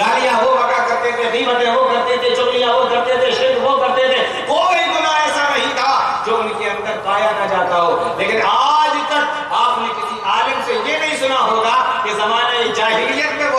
وہ بکا کرتے تھے، غیبتیں وہ کرتے تھے، چغلیاں وہ کرتے تھے، شرک وہ کرتے تھے۔ کوئی گناہ ایسا نہیں تھا جو ان کے اندر پایا نہ جاتا ہو۔ لیکن آج تک آپ نے کسی عالم سے یہ نہیں سنا ہوگا کہ زمانہ جاہلیت میں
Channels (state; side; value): identical; both; correlation 1.00